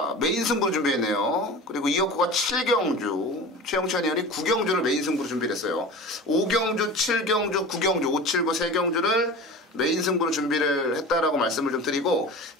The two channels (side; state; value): both; normal; correlation 0.34